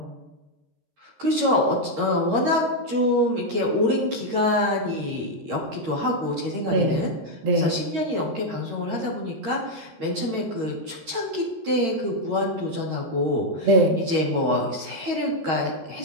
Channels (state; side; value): late; left; 13 ms